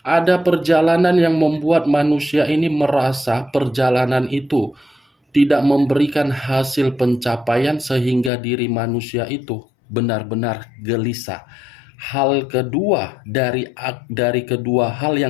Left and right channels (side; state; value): right; drops out; at 8.3 s